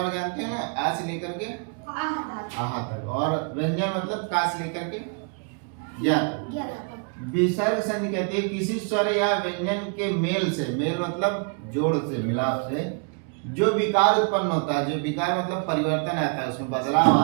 जानते हैं ना, आ से लेकर के आहा तक, और व्यंजन मतलब का से लेकर के या तक। विसर्ग संधि कहते हैं किसी स्वर या व्यंजन के मेल से, मेल मतलब जोड़ से, मिलाप से जो विकार उत्पन्न होता है, जो विकार मतलब परिवर्तन आता है, उसमें बदलाव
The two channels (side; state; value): left; quieter; 39.3 dB